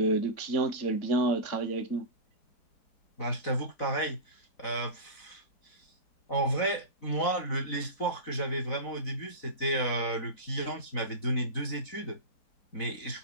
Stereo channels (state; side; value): late; right; 4.0 ms